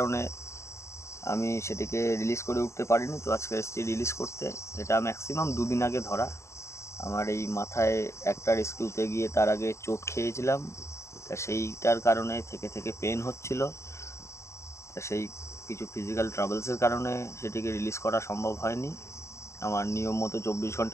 আমি সেটিকে রিলিজ করে উঠতে পারিনি। তো আজকে এসেছি রিলিজ করতে। এটা ম্যাক্সিমাম 2 দিন আগে ধরা। আমার এই মাথায় একটা রেস্কিউতে গিয়ে তার আগে চোট খেয়েছিলাম, তা সেইটার কারণে থেকে পেন হচ্ছিল। তা সেই কিছু ফিজিক্যাল ট্রাবলসের কারণে সেটিকে রিলিজ করা সম্ভব হয়নি আমার নিয়ম মতো 24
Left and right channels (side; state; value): right; late; 0.14 ms